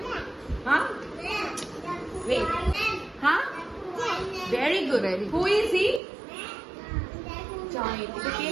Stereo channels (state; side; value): drops out; left; at 6.0 s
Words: Huh? Wait. Huh? Very good. Who is he? Giant. এটা কে?